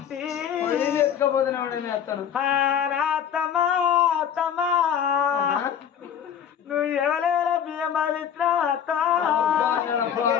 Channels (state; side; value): quieter; right; 8.7 dB